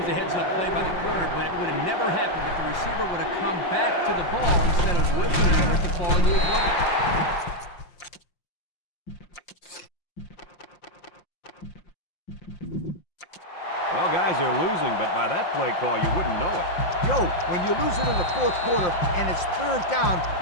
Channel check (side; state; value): right; late; 5.7 ms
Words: a heads-up play by the corner, but it would have never happened if the receiver would have come back to the ball instead of whipping for it to fall into his lap. Well, guys, they're losing, but by that play call, you wouldn't know it. Yo, when you're losing in the 4th quarter and it's 3rd down,